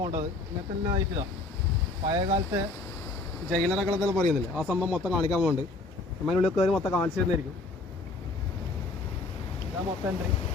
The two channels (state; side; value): quieter; right; 3.3 dB